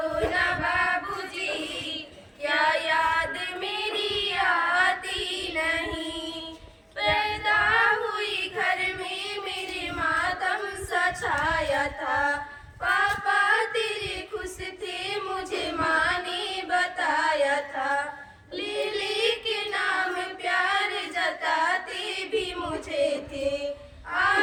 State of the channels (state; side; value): identical; both; correlation 1.00